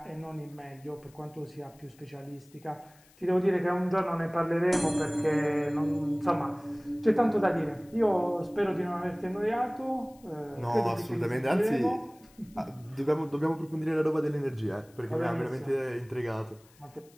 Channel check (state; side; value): noise; left; hiss, 28 dB below the sound